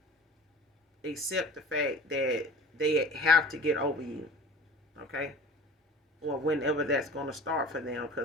accept the fact that they have to get over you, okay? Or whenever that's going to start for them.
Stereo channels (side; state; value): both; normal; correlation 0.41